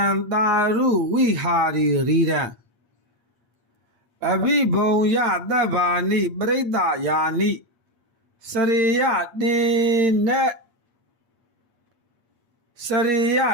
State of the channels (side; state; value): left; late; 8.4 ms